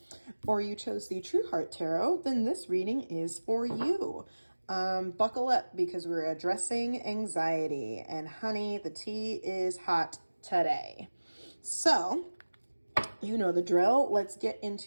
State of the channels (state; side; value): inverted; both; correlation -1.00